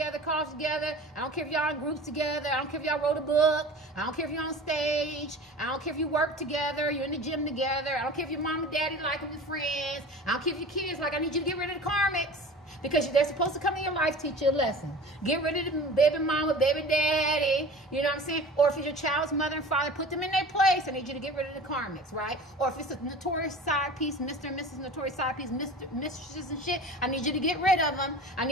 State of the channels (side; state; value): both; normal; correlation 0.38